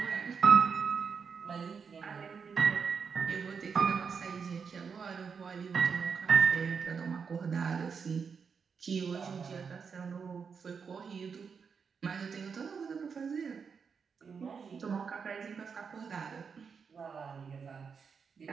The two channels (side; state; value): left; quieter; 6.0 dB